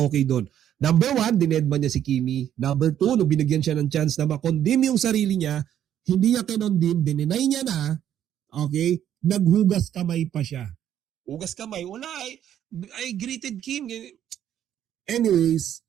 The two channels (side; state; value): left; quieter; 10.5 dB